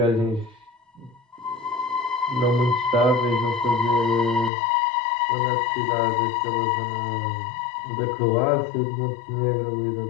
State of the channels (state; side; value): drops out; right; at 4.5 s